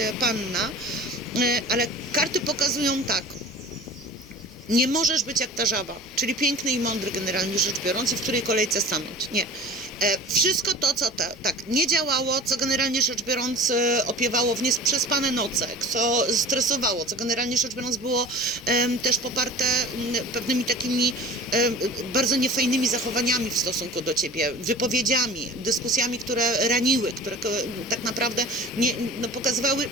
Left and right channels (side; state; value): both; normal; correlation 0.39